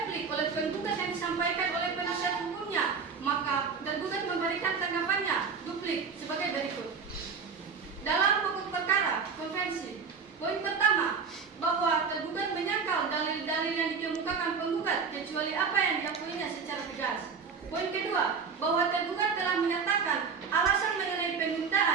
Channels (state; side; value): quieter; left; 5.7 dB